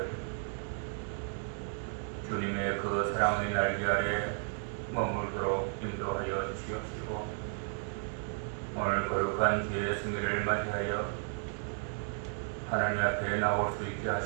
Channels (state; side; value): silent; left; 55 dB below the other